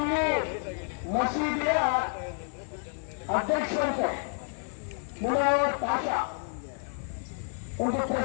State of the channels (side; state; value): right; silent; 56 dB below the other